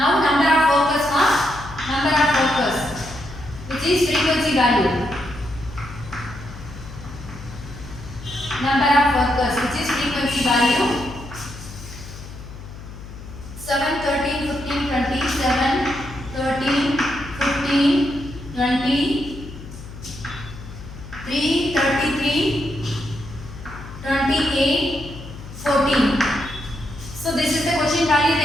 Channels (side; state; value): left; noise; hum, 14 dB below the sound